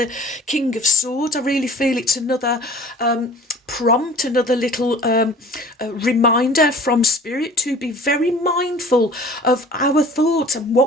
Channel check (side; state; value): both; normal; correlation 0.46